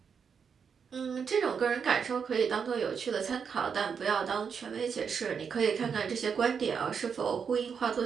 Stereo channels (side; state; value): left; quieter; 6.5 dB